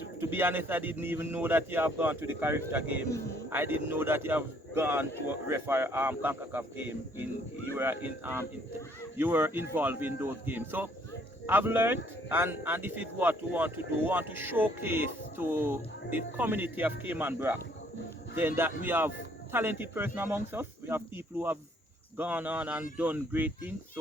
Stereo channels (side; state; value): both; normal; correlation 0.63